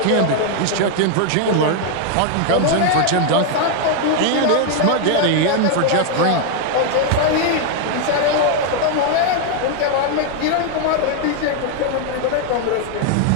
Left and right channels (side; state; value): both; different; correlation 0.00